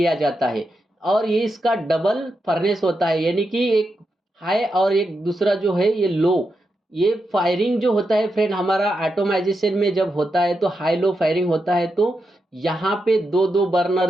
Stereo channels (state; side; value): normal; both; correlation 0.86